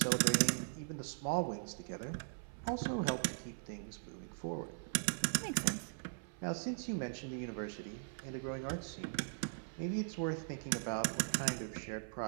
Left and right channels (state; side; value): silent; left; 51 dB below the other